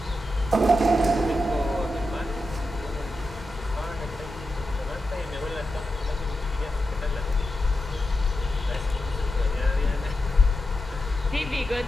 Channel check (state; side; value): normal; both; correlation 0.89